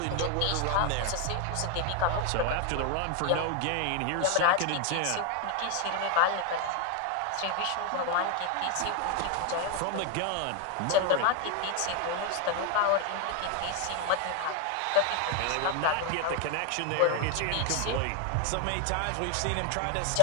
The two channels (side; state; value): both; different; correlation 0.01